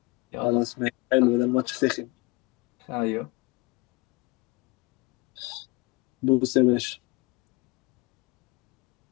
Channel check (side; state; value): right; quieter; 24.1 dB